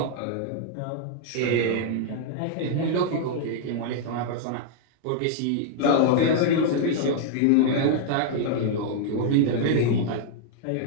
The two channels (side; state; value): both; different; correlation -0.01